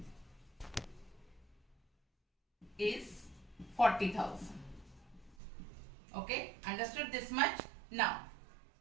is 40,000. Okay, understood this much? Now,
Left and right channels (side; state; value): left; drops out; at 5.4 s